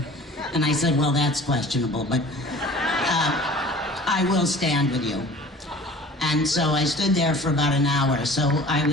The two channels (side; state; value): both; normal; correlation 0.45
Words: And I said, well, that's questionable, but I will stand with you. And so I stood there for about an hour, so I